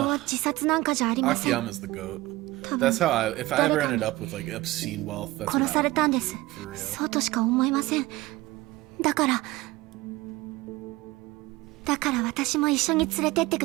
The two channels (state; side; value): quieter; left; 19.1 dB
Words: 自殺なんかじゃありません。 Akiyama's the goat. 多分 That's how if I ever ended up with like obscene wealth, that's what 殺さ I れ would たんです。 do, for real. そうとしか思えません。だから私も一緒に連れてって